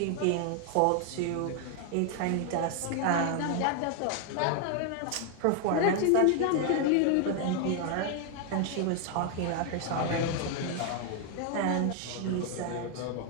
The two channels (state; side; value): different; both; correlation 0.00